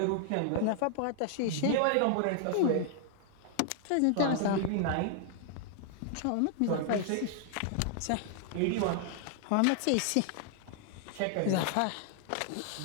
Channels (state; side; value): different; both; correlation 0.00